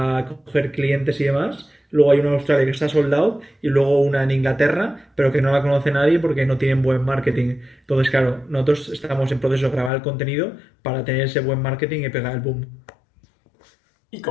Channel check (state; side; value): drops out; right; at 9.9 s